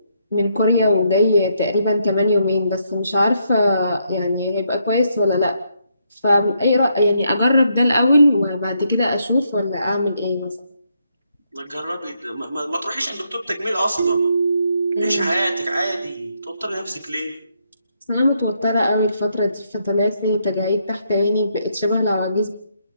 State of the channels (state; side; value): inverted; both; correlation -0.76